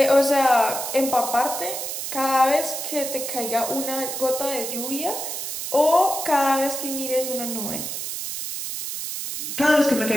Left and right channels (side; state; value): right; noise; hiss, 5 dB below the sound